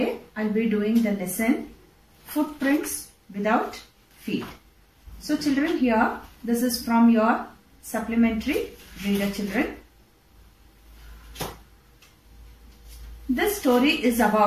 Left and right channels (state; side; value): identical; both; correlation 1.00